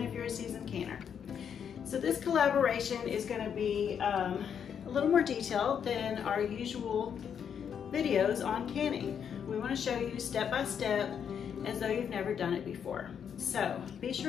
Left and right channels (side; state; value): right; quieter; 7.8 dB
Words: if you're a seasoned canner. So this collaboration is going to be a little more detailed than our usual videos on canning. We want to show you step by step as though you've never done it before. So be